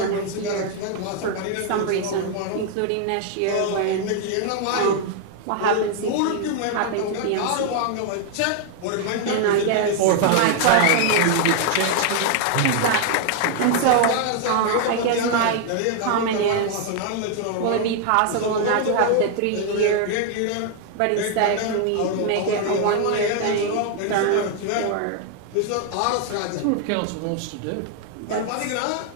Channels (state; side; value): different; both; correlation 0.00